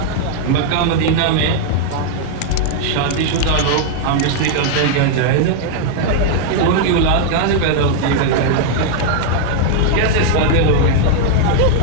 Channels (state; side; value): different; both; correlation 0.00